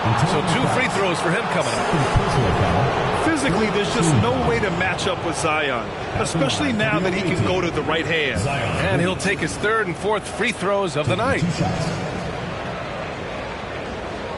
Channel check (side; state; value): both; identical; correlation 1.00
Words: So 2 free throws for him coming up. Physically, there's just no way to match up with Zion, especially now that he can go to the right hand. And he'll take his 3rd and 4th free throws of the night.